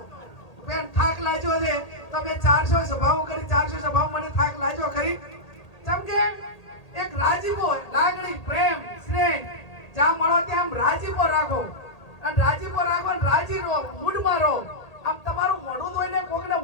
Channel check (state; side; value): late; right; 1.8 ms